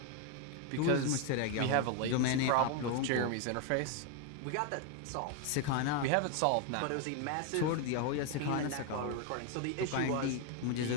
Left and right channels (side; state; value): both; different; correlation 0.01